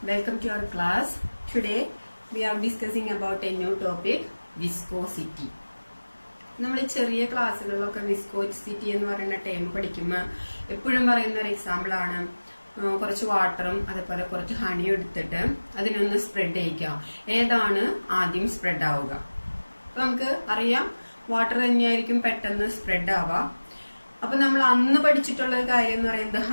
welcome to our class. Today we are discussing about a new topic, viscosity. നമ്മൾ ചെറിയ ക്ലാസ്സുകളിലൊക്കെ viscosity എന്ന് പറയുന്ന term പഠിക്കുമ്പോൾ എപ്പോഴും പറയുന്ന ഒരു എക്സാമ്പിൾ ആണ് കുറച്ച് വാട്ടറും അതേപോലെ കുറച്ച് ഹണിയും എടുത്തിട്ട് അതിനൊന്ന് സ്പ്രെഡ് ചെയ്യിക്കുക. ഏതാണ് ആദ്യം സ്പ്രെഡ് ആവുക? അപ്പൊ നമുക്ക് അറിയാം വാട്ടർ തന്നെയായിരിക്കും പെട്ടെന്ന് സ്പ്രെഡ് ആവുക. അപ്പൊ നമ്മൾ അന്ന് പഠിച്ചിട്ടുള്ള കാര്യം എന്ന് പറയുന്നത്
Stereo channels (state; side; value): inverted; both; correlation -1.00